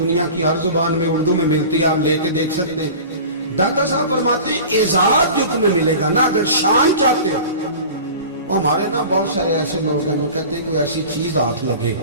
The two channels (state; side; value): inverted; both; correlation -0.38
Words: की हर जुबान में उर्दू में मिलती है, आप लेके देख सकते हैं। दाता साहब फरमाते हैं एजाज जो तुम्हें मिलेगा ना, अगर शान चाहते हो, वो हमारे ना बहुत सारे ऐसे लोग हैं जो कहते हैं कोई ऐसी चीज हाथ लगे,